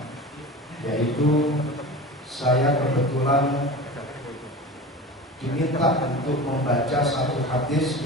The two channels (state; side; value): normal; both; correlation 0.33